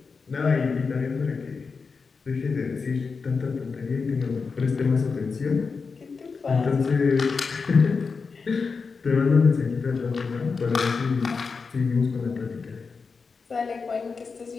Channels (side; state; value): right; quieter; 4.9 dB